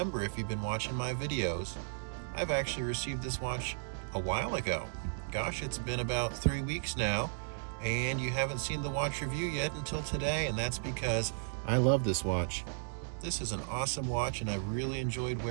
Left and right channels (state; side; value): silent; left; digital silence